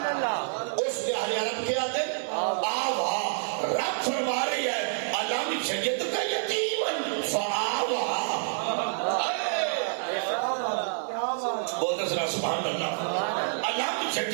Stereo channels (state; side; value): silent; left; digital silence